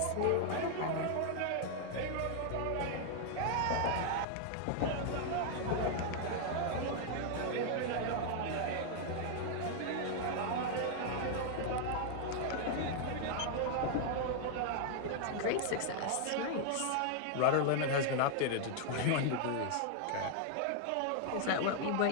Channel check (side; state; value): both; different; correlation 0.00